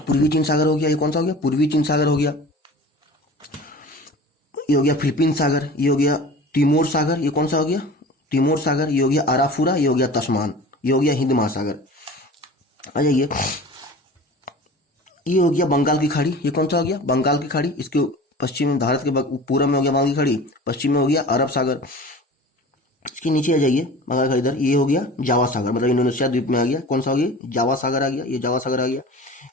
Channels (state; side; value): normal; both; correlation 0.39